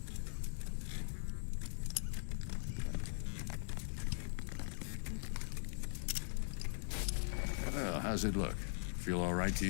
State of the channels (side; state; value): right; silent; digital silence